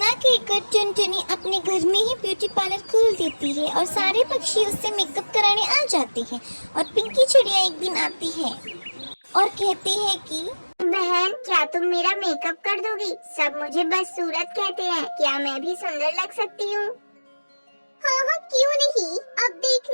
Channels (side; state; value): both; inverted; correlation -1.00